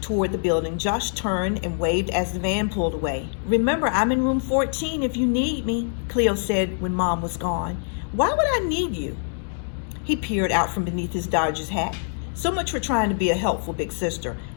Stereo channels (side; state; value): right; silent; digital silence